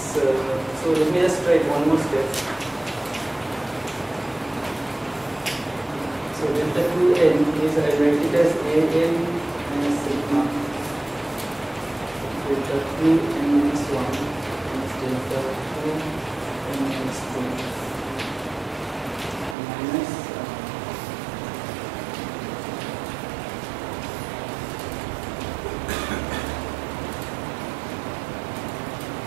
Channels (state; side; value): drops out; left; at 19.6 s